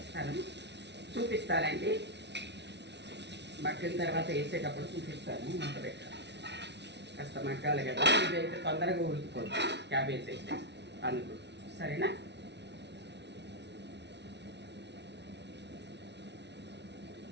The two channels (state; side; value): late; left; 0.50 ms